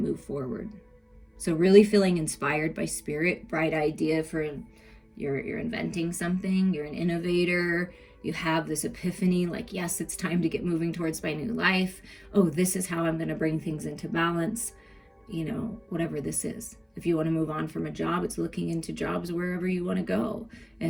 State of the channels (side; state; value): both; identical; correlation 1.00